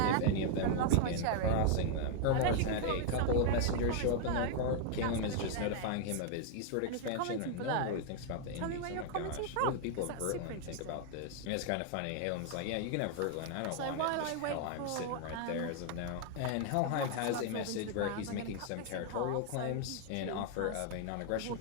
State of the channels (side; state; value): both; different; correlation 0.00